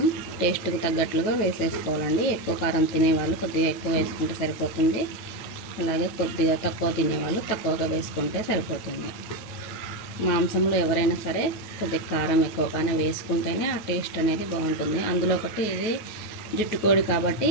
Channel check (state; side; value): late; right; 9.4 ms